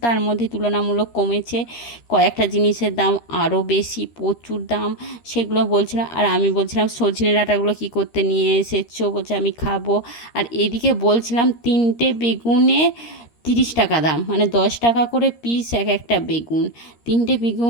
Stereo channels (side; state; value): right; late; 13 ms